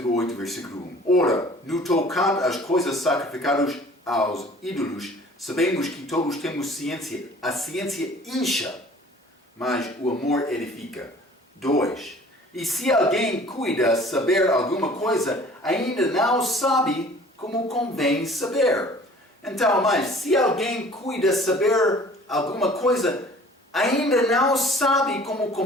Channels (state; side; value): normal; both; correlation 0.50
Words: 8, versículo 1. Ora, no tocante às coisas sacrificadas aos ídolos, sabemos que todos temos ciência. A ciência incha, mas o amor edifica. 2. E se alguém cuida saber alguma coisa, ainda não sabe como convém saber. Então, mas se alguém cuida saber alguma coisa, ainda não sabe como